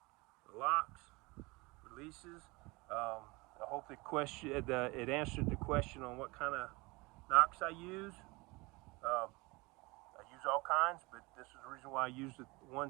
the locks, releases. I hope it answered the question on what kind of knocks I use. I use all kinds, but this is the reason why I use the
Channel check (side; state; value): left; quieter; 24.5 dB